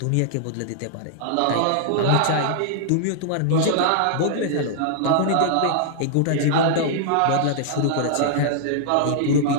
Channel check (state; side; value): different; both; correlation -0.01